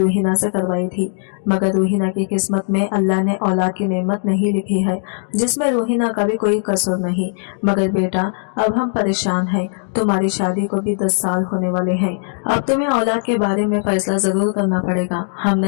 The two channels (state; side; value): silent; right; digital silence